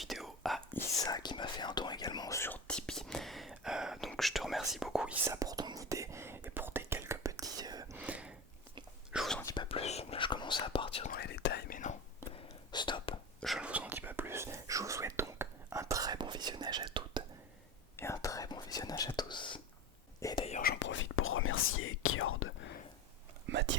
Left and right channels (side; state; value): both; normal; correlation 0.27